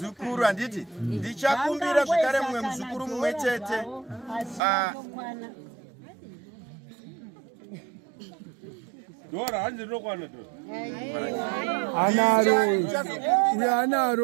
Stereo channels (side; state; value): left; drops out; at 4.6 s